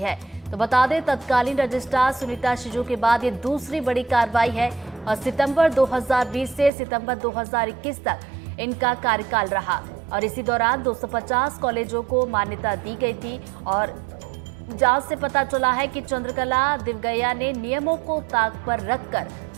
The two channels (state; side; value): drops out; left; at 6.7 s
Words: तो बता दें, तत्कालीन रजिस्ट्रार सुनीता शिजू के बाद ये दूसरी बड़ी कार्रवाई है और सितंबर 2020 से सितंबर 2021 तक इनका कार्यकाल रहा और इसी दौरान 250 कॉलेजों को मान्यता दी गई थी और जांच से पता चला है कि चंद्रकला दिवगैया ने नियमों को ताक पर